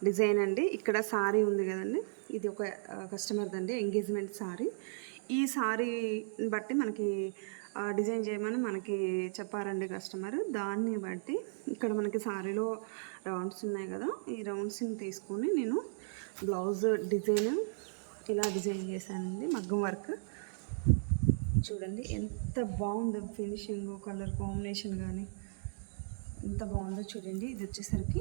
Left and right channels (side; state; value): left; silent; digital silence